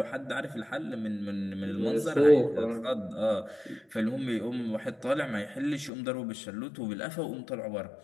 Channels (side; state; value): right; drops out; at 5.9 s